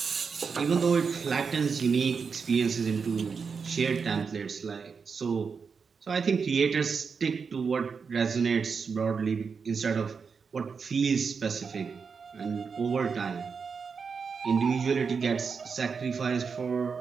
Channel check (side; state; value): left; quieter; 5.6 dB